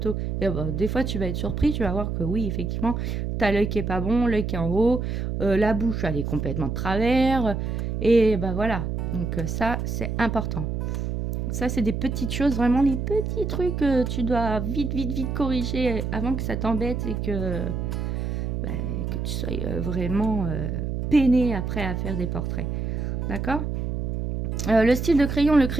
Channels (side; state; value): right; noise; hum, 2 dB below the sound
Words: Et des fois, tu vas être surpris, tu vas voir que oui, effectivement, tu as l'œil qui est pas bon, l'œil qui est en haut, la bouche, elle est complètement de travers. Et voilà. Donc ça, c'est important. Ça, c'est des petites choses, vraiment les petits trucs que tu dois vite corriger avant que ça t'embête et que tu sois vraiment peiné après à faire des portraits. D'accord? Le style de crayon,